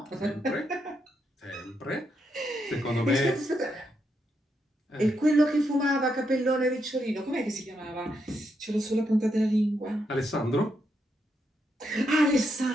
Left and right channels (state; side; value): normal; both; correlation 0.81